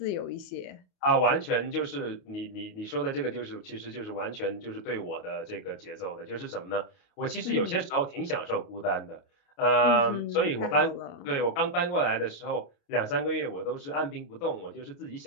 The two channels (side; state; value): right; late; 28 ms